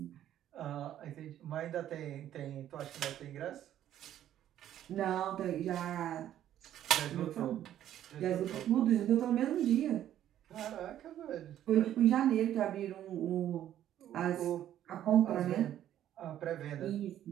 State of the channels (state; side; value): quieter; left; 11.6 dB